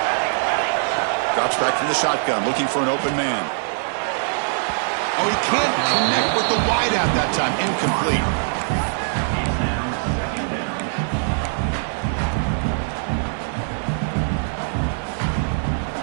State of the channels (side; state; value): left; silent; 64 dB below the other